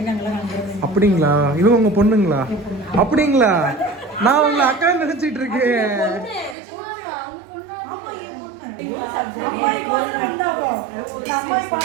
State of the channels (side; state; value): left; drops out; at 6.6 s